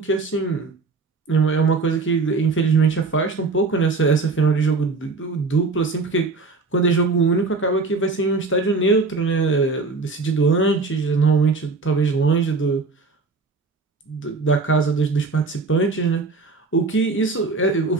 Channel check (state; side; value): quieter; left; 4.0 dB